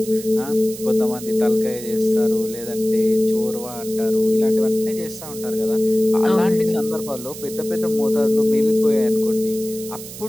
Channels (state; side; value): noise; right; hiss, 13 dB below the sound